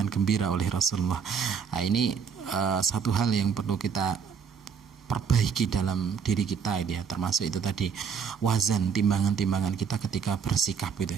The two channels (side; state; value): left; quieter; 6.6 dB